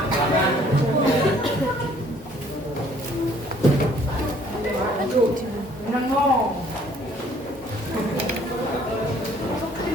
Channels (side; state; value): both; normal; correlation 0.59